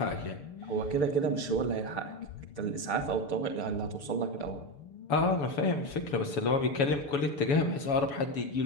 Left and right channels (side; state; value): right; late; 6.8 ms